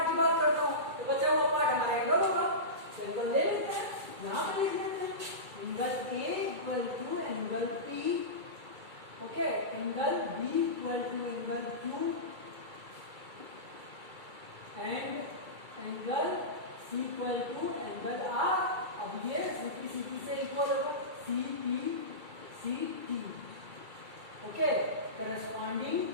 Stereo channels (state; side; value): late; left; 2.3 ms